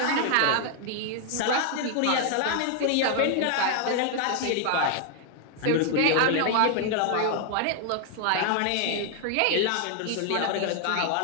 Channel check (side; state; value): both; different; correlation 0.00